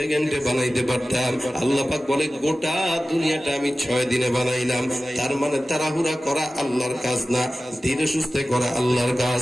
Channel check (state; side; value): normal; both; correlation 0.95